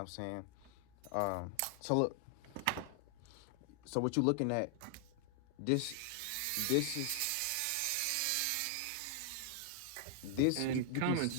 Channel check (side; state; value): both; different; correlation 0.00